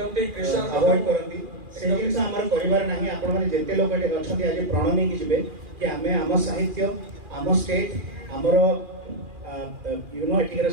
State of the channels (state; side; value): late; left; 2.4 ms